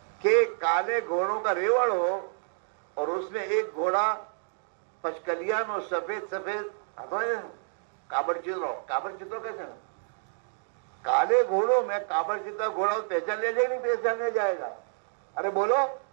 کہ کالے گھوڑوں کا ریوڑ ہو اور اس میں ایک گھوڑا پچکلیان اور سفید کابڑ چترو کیسے نا کالے گھوڑوں میں کابڑ چترا گھوڑا پہچان لیا جائے گا، نہیں پہچان لیا جائے گا؟ ارے بولو،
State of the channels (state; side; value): silent; left; digital silence